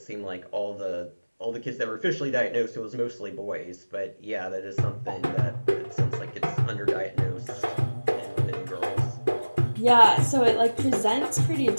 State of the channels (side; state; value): both; inverted; correlation -1.00